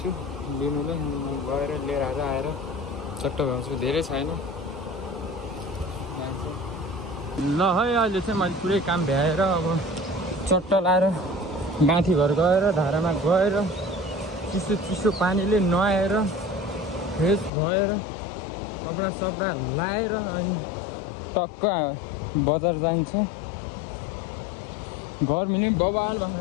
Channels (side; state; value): right; drops out; at 17.5 s